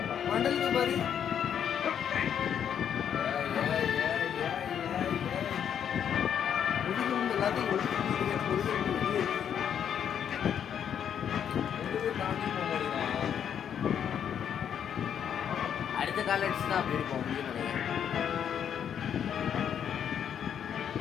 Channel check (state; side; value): quieter; right; 8.7 dB